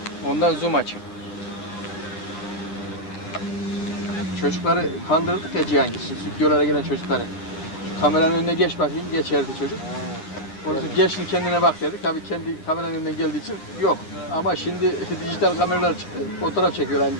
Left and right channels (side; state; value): right; late; 9.6 ms